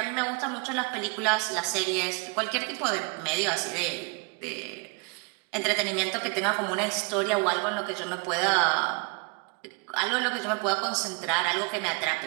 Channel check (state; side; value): quieter; left; 32.3 dB